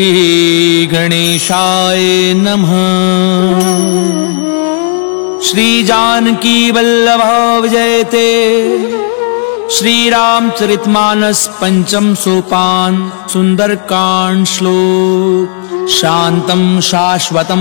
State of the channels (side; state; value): right; silent; digital silence